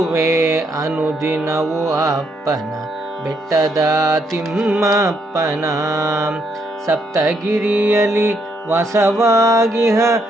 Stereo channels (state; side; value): normal; both; correlation 0.74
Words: ಅನುದಿನವು ಅಪ್ಪನ ಬೆಟ್ಟದ ತಿಮ್ಮಪ್ಪನ, ಸಪ್ತಗಿರಿಯಲ್ಲಿ ವಾಸವಾಗಿಹ